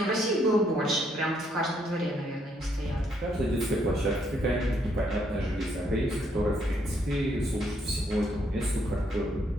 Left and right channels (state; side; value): normal; both; correlation 0.72